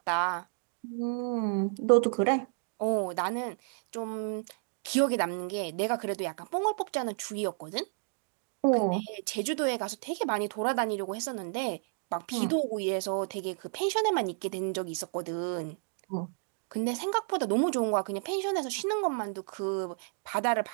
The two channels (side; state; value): left; silent; 57 dB below the other